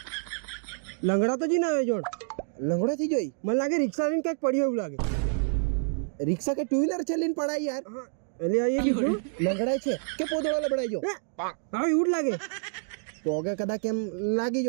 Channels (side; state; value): left; silent; digital silence